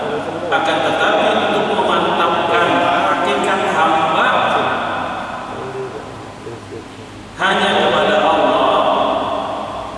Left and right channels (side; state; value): both; identical; correlation 1.00